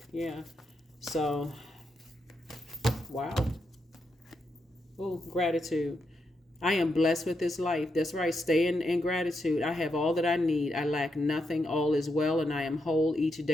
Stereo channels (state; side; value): normal; both; correlation 0.83